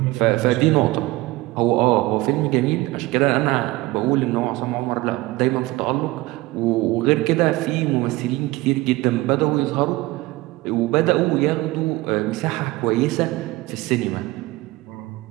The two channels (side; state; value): left; quieter; 20.0 dB